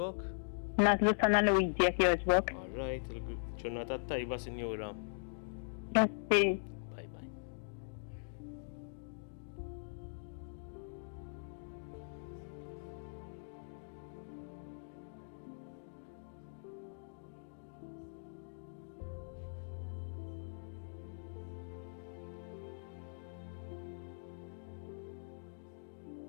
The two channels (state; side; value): silent; right; digital silence